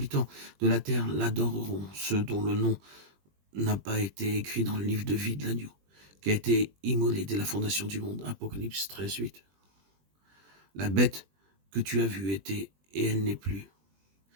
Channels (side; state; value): left; late; 20 ms